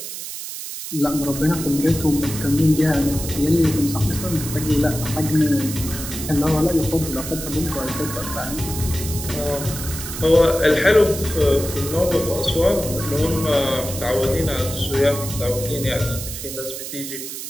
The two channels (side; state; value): right; noise; hiss, 8 dB below the sound